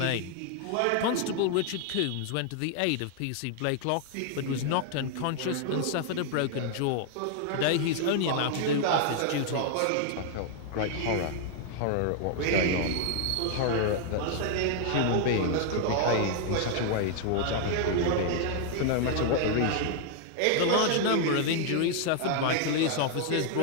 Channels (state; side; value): different; both; correlation 0.00